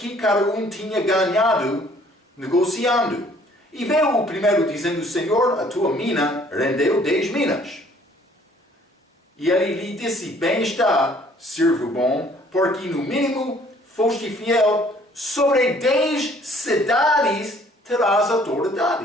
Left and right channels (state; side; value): normal; both; correlation 0.58